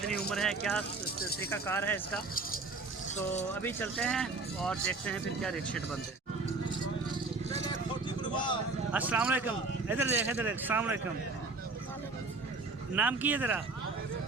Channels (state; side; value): quieter; left; 3.6 dB